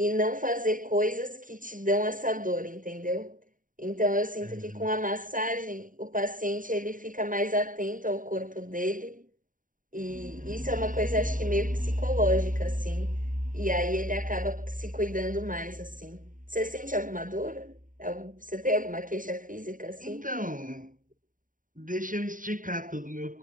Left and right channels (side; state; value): left; late; 0.39 ms